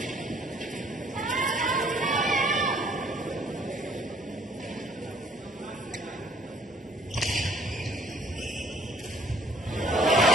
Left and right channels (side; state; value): both; normal; correlation 0.59